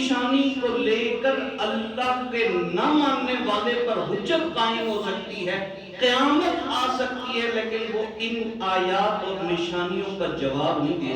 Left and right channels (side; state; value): both; identical; correlation 1.00